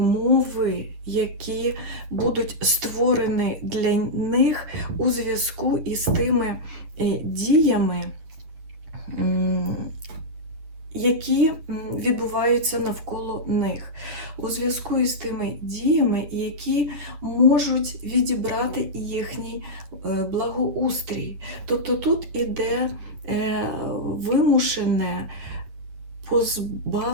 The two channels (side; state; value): left; late; 10 ms